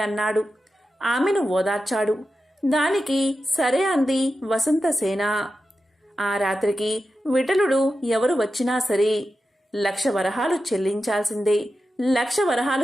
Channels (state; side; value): normal; both; correlation 0.91